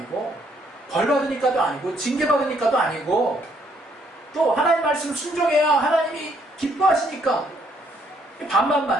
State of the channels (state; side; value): normal; both; correlation 0.69